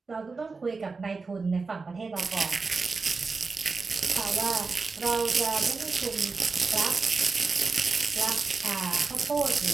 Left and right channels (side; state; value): left; quieter; 4.3 dB